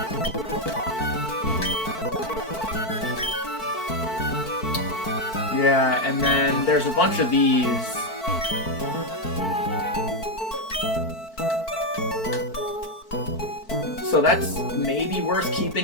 Yeah, and then there's a bunch of these. So that's maybe worth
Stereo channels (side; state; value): right; late; 4.5 ms